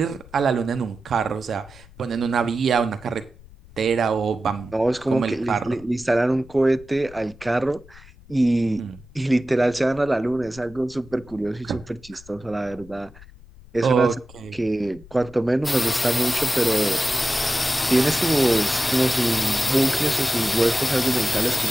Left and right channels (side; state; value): left; noise; rumble, 22 dB below the sound